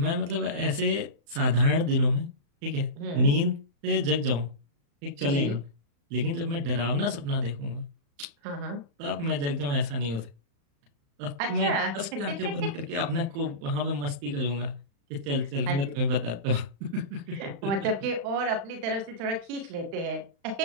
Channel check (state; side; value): late; left; 35 ms